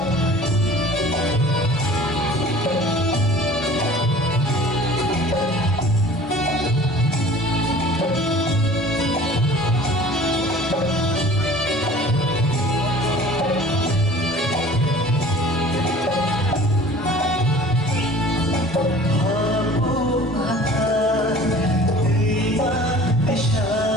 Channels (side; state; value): both; normal; correlation 0.46